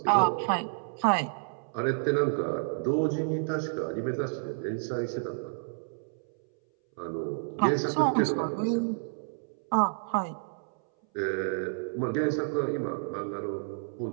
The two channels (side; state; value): left; silent; 58 dB below the other